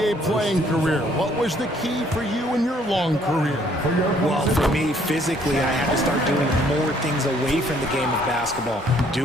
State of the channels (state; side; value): normal; both; correlation 0.63